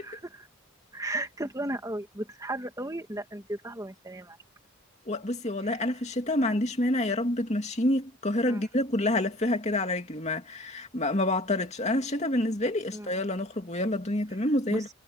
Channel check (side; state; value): both; normal; correlation 0.50